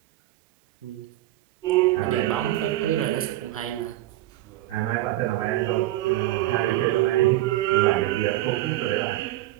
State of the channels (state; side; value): quieter; left; 15.8 dB